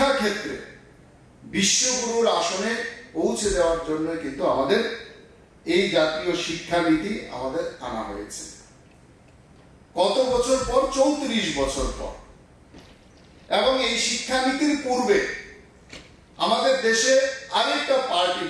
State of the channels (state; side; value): identical; both; correlation 1.00